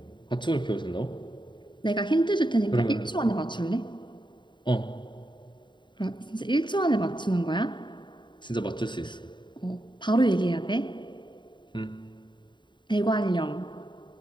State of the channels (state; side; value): late; right; 0.23 ms